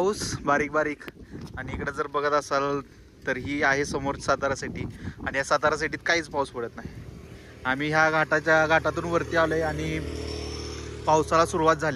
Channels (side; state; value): both; identical; correlation 1.00